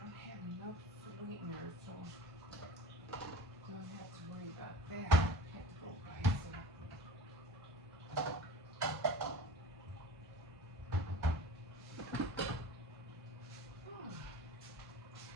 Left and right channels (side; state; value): both; normal; correlation 0.40